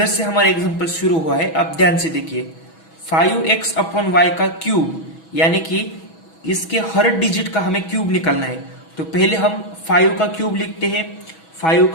से हमारा एग्जांपल शुरू हुआ है। अब ध्यान से देखिए 5x/y का क्यूब, यानी कि इसके हर डिजिट का हमें क्यूब निकालना है। तो पहले हम 5 का क्यूब लिखते हैं। 5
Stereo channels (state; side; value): late; right; 6.2 ms